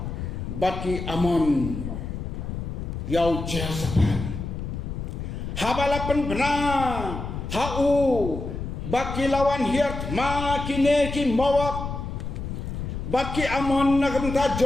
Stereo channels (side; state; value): left; noise; rumble, 6 dB below the sound